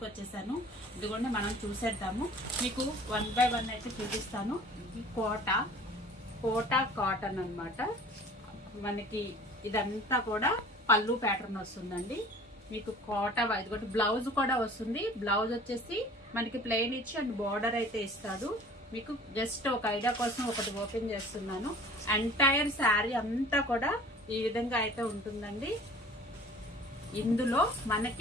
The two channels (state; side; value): normal; both; correlation 0.47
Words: వచ్చేసాను. ఇదిగోండి మనం చూసేద్దాము. మీకు 1 by 1 అయితే చూపిస్తాను. ఇది కోటా కాటన్ అన్నమాట. మనకి ఇదంతా కూడా పళ్ళు ప్యాటర్న్ వస్తుందండి. మీకు కోట ఇదిగోటి బ్లౌజ్ కూడా వస్తుంది. బ్లౌజ్ వచ్చేసి మనకి ప్లెయిన్ ఇచ్చి అండ్ బార్డర్ అయితే ఇస్తాడు. మీకు జస్ట్ ఒక ఐడియా కోసం ఒకటి ఓపెన్ చేస్తున్నాను. ఎంటైర్ శారీ అంతా కూడా ఈ విధంగా అయితే ఉంటుందండి. ఇందులో